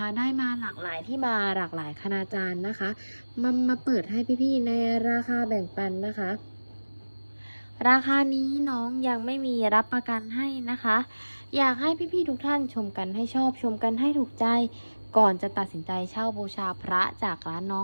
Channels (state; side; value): inverted; both; correlation -1.00